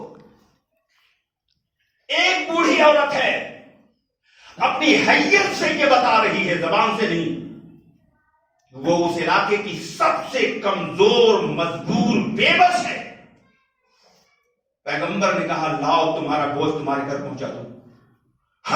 ایک بوڑھی عورت ہے, اپنی حیثیت سے یہ بتا رہی ہے, زبان سے نہیں. وہ اس علاقے کی سب سے کمزور مجبور بے بس ہے. پیغمبر نے کہا لاؤ تمہارا بوجھ تمہارے گھر پہنچا دو.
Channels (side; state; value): both; identical; correlation 1.00